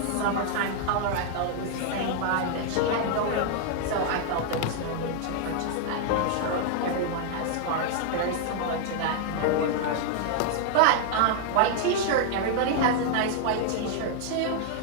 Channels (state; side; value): different; both; correlation 0.00